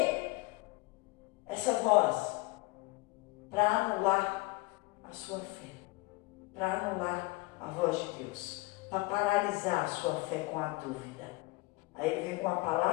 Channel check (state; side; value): quieter; right; 23.4 dB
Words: Essa voz, para anular a sua fé, para anular a voz de Deus, para paralisar a sua fé com a dúvida. Aí ele vem com a